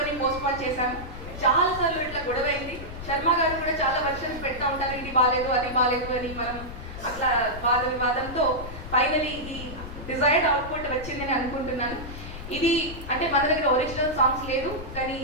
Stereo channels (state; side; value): noise; left; rumble, 11 dB below the sound